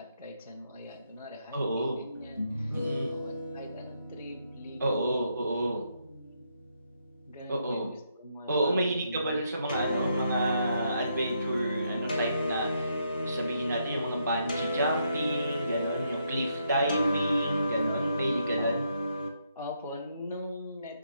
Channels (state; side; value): inverted; both; correlation -0.77